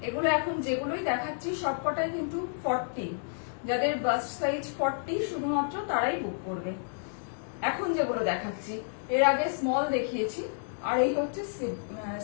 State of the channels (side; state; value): right; silent; digital silence